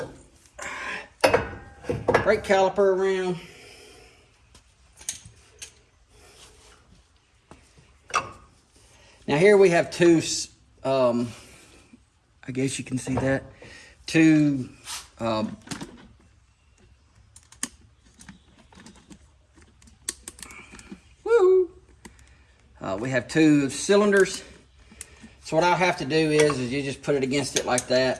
brake caliper around. Now here we have two, I guess you can see that, two we have two cylinders. So what I'll have to do is you just put it against it like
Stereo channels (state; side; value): identical; both; correlation 1.00